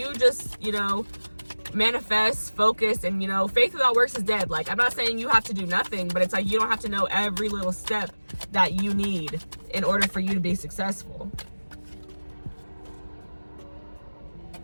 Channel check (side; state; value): both; inverted; correlation -1.00